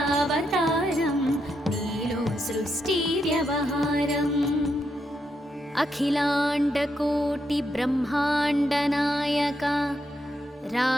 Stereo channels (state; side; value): normal; both; correlation 0.81